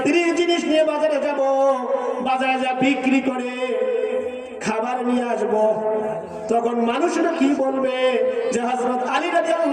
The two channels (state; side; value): identical; both; correlation 1.00